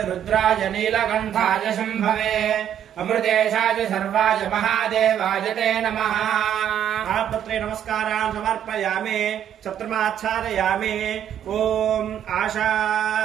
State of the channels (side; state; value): left; quieter; 9.9 dB